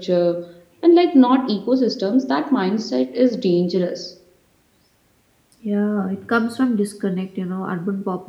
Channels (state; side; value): identical; both; correlation 1.00